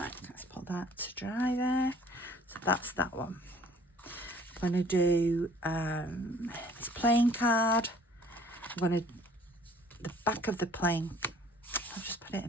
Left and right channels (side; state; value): both; normal; correlation 0.55